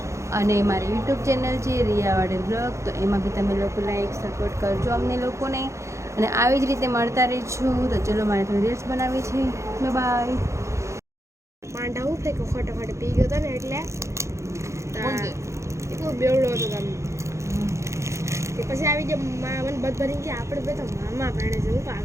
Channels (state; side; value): late; left; 0.14 ms